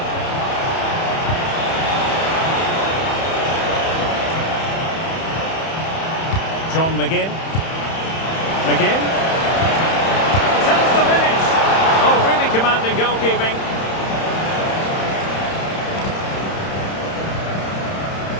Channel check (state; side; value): late; right; 31 ms